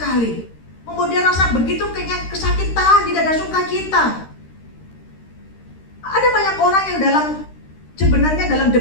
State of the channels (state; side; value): late; right; 13 ms